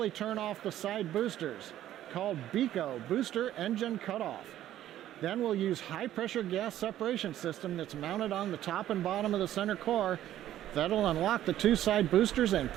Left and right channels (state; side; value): quieter; left; 12.6 dB